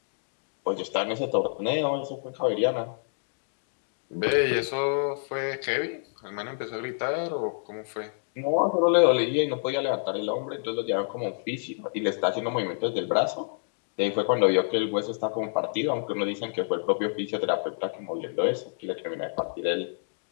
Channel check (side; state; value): right; silent; digital silence